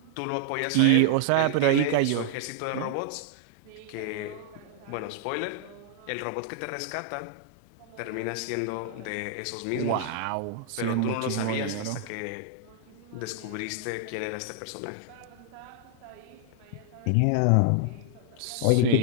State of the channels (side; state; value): both; different; correlation -0.01